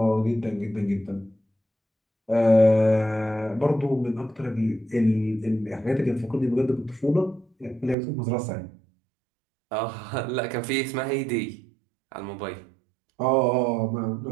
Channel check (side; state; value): left; drops out; at 8.0 s